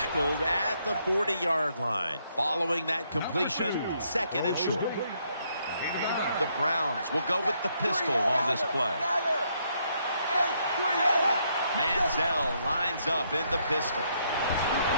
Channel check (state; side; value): inverted; both; correlation -0.73